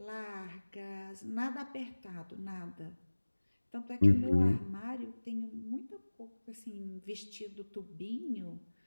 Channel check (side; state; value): both; inverted; correlation -1.00